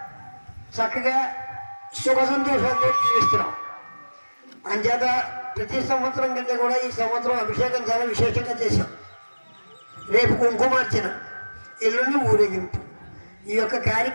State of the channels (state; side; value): inverted; both; correlation -1.00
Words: చక్కగా సుఖ సంతోషాలతో జీవిస్తున్నాం. అంచేత ప్రతి సంవత్సరం కంటే కూడా ఈ సంవత్సరం అభిషేకం చాలా విశేషంగా చేశాం. రేపు కుంకుమార్చన, ఎల్లుండి ఊరేగింపు. ఈ యొక్క